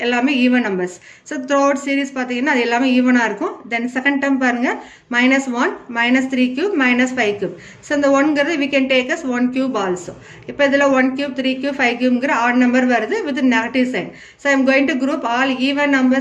எல்லாமே even numbers. So throughout series பாத்தீங்கன்னா அது எல்லாமே ஈவனா இருக்கும். Then second term பாருங்க -1 -3 cube -5 cube. So இந்த 1 ங்கிறது we can take as 1 cube also. இப்போ இதுல 1 cube 3 cube 5 cube ங்கிற odd number வருது with negative sign. So I am going to group all even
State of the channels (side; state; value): both; identical; correlation 1.00